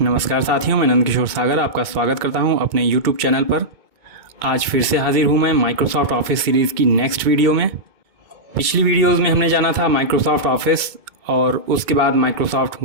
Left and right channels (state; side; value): late; left; 2.2 ms